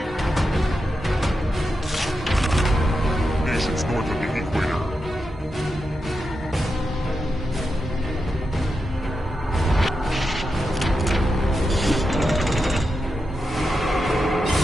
Nations north of the equator.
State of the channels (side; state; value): both; normal; correlation 0.88